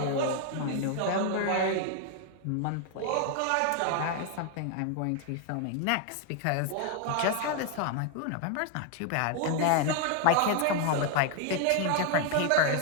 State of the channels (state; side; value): different; both; correlation 0.01